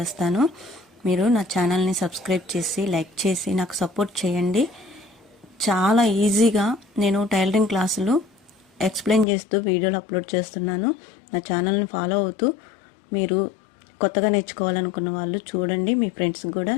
మీరు నా ఛానల్ని సబ్స్క్రైబ్ చేసి లైక్ చేసి నాకు సపోర్ట్ చేయండి. చాలా ఈజీగా నేను టైలరింగ్ క్లాసులు ఎక్స్ప్లెయిన్ చేస్తూ వీడియోలు అప్లోడ్ చేస్తున్నాను. నా ఛానల్ని ఫాలో అవుతూ మీరు కొత్తగా నేర్చుకోవాలనుకున్న వాళ్ళు చూడండి, మీ ఫ్రెండ్స్కి కూడా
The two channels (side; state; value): right; drops out; at 9.2 s